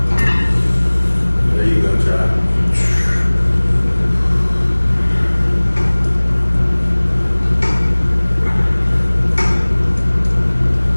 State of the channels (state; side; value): inverted; both; correlation -1.00